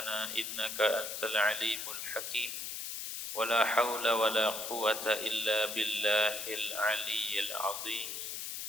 innaka antal alimul hakim. Wala haula wala quwwata illa billahil aliyyil azim.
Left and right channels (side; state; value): left; noise; hiss, 5 dB below the sound